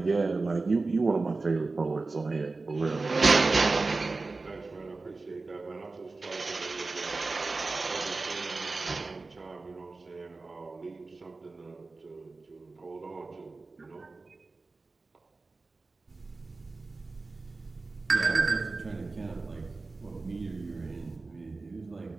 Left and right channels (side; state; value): left; quieter; 3.6 dB